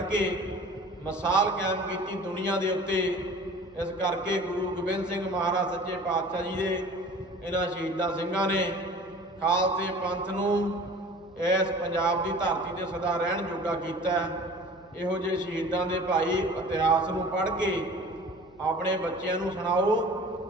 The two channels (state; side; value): noise; left; hum, 29 dB below the sound